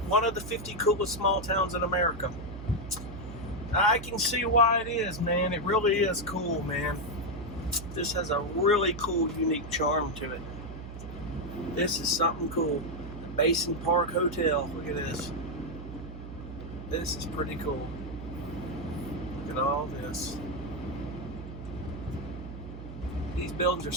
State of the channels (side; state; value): right; noise; hum, 11 dB below the sound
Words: one of the 50 coolest small towns in America. I can see why it is, man. It really is cool, man. This has a really cool, unique charm to it. This is something cool. The Basin Park Hotel. Look at this. This is pretty cool. Look at all this. These buildings are